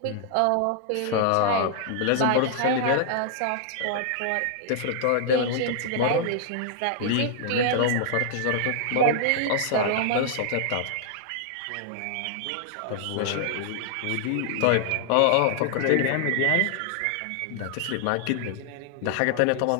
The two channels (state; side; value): different; both; correlation 0.00